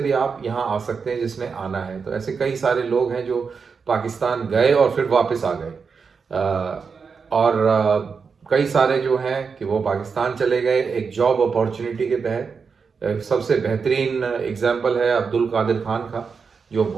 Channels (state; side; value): quieter; left; 5.5 dB